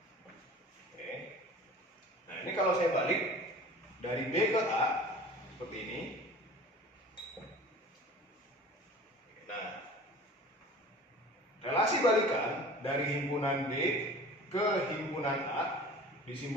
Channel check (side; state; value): both; normal; correlation 0.42